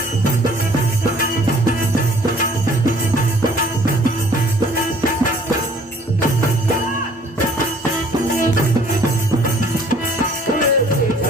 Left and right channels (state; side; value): normal; both; correlation 0.56